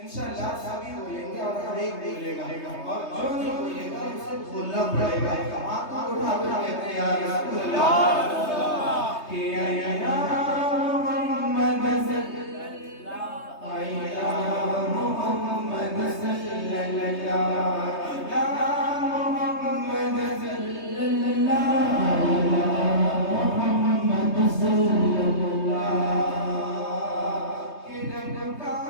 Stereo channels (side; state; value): right; late; 3.2 ms